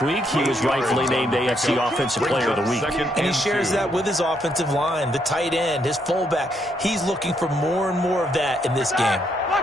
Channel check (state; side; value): normal; both; correlation 0.75